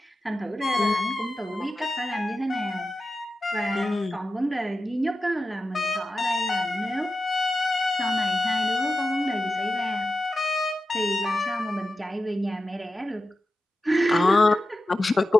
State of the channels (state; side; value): normal; both; correlation 0.92